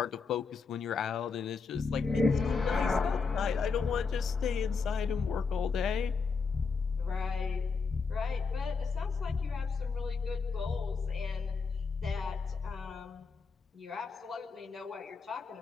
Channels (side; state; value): right; quieter; 4.9 dB